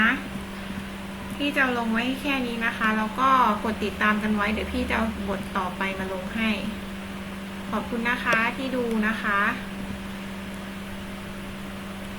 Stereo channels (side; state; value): both; identical; correlation 1.00